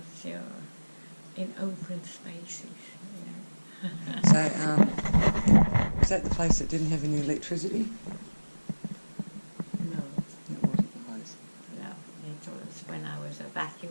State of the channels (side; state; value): both; inverted; correlation -1.00